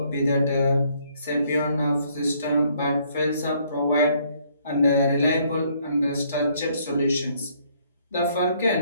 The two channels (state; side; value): inverted; both; correlation -0.66